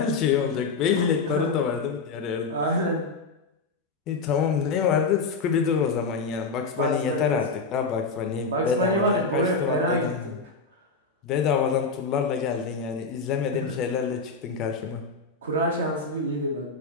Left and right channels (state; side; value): quieter; right; 4.2 dB